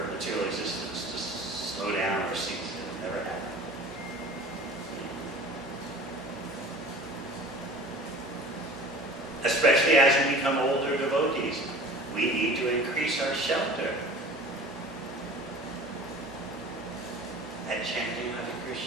material existence to slow down or cease. It'll never happen. Especially as we become older devotees, we need to increase our shelter at chanting Hare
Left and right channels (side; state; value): both; normal; correlation 0.42